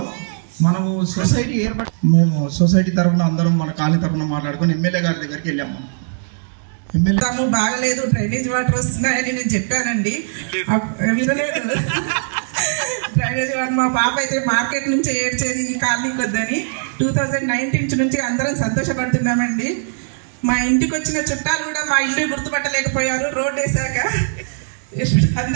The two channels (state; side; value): silent; left; digital silence